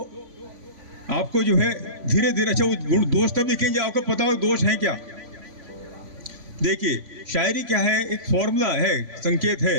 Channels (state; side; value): late; left; 3.5 ms